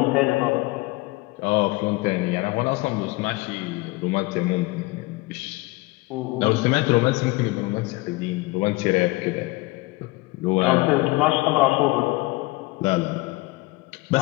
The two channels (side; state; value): right; quieter; 22.4 dB